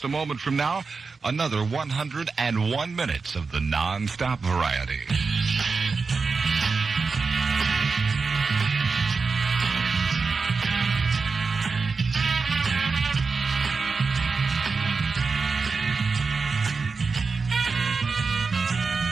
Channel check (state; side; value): quieter; left; 4.6 dB